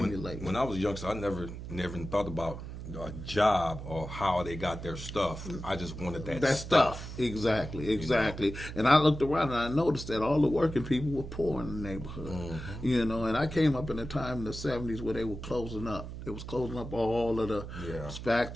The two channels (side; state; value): right; noise; hum, 9 dB below the sound